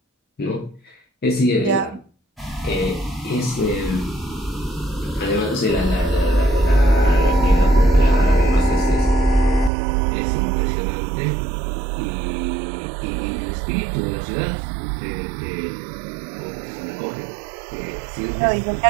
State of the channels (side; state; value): left; drops out; at 9.7 s